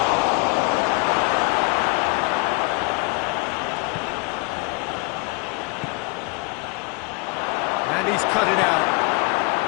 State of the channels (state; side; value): quieter; right; 28.1 dB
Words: And he's cut it out.